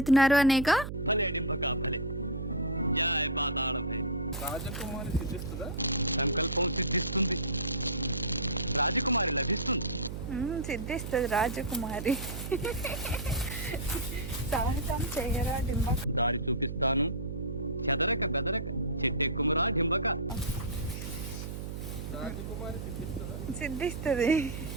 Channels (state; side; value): noise; right; hum, 6 dB below the sound